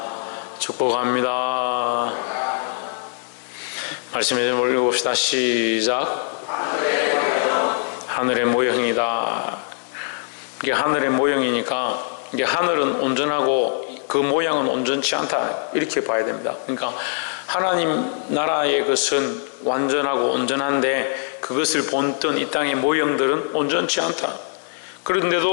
축복합니다. 말씀에 좀 올려봅시다. 시작. 하늘의 모형이다. 이게 하늘의 모형이니까 이게 하늘은 온전하고 그 모양은 온전치 않다, 이렇게 봐야 됩니다. 그러니까 하나님 나라의 것은 완전하고 온전한데 그것을 본뜬 이 땅의 모형들은 온전치 않다.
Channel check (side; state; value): right; silent; 64 dB below the other